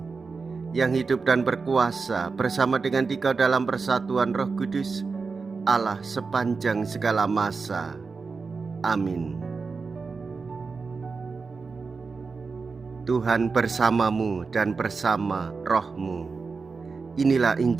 yang hidup dan berkuasa bersama dengan Dikau dalam persatuan Roh Kudus, Allah sepanjang segala masa. Amin. Tuhan bersamamu dan bersama rohmu. Inilah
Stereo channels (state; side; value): quieter; left; 4.6 dB